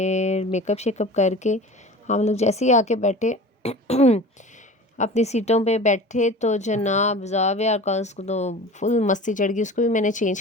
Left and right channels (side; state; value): both; normal; correlation 0.38